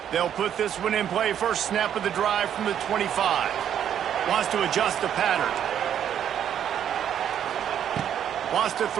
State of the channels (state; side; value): quieter; left; 9.5 dB